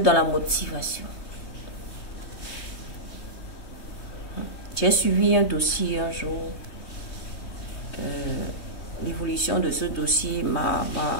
la motivation. J'ai suivi un dossier un jour. L'évolution de ce dossier m'a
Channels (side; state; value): right; late; 3.2 ms